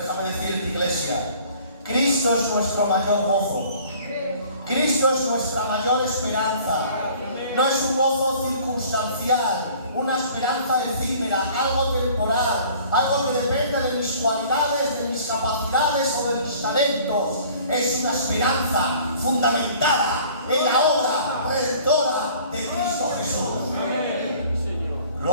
decirte, iglesia, Cristo es nuestro mayor gozo. Cristo es nuestra mayor esperanza. No es un gozo circunstancial, una esperanza efímera, algo temporal, algo que depende de mis cualidades, de mis capacidades o de mis talentos. Es una esperanza fundamentada en la obra redentora de Cristo Jesús.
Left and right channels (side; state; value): both; inverted; correlation -0.51